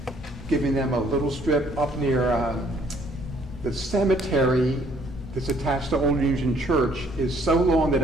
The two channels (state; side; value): normal; both; correlation 0.64